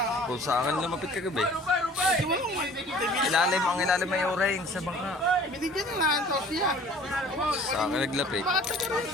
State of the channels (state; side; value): normal; both; correlation 0.49